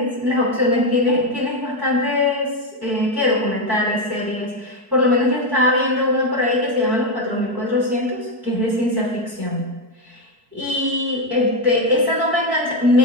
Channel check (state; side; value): late; left; 4.6 ms